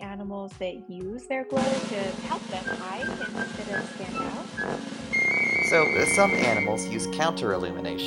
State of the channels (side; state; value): both; identical; correlation 1.00